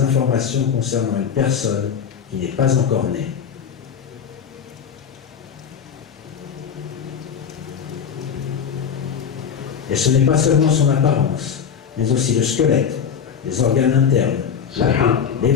concernant une personne qui n'est pas encore née. Et ce n'est pas seulement son apparence, mais aussi le squelette, les organes internes, la peau, les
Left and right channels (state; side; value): quieter; right; 7.3 dB